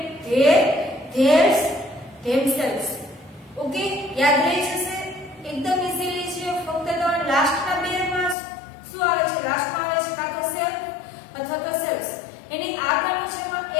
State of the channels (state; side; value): drops out; right; at 8.3 s